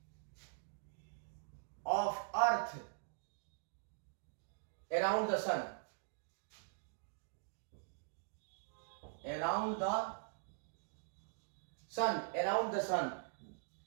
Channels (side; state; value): left; silent; digital silence